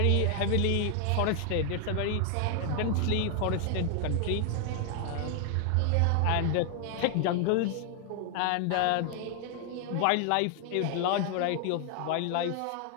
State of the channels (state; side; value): different; both; correlation 0.00